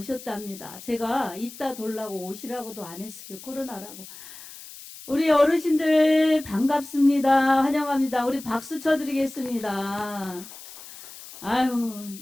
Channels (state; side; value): noise; left; hiss, 16 dB below the sound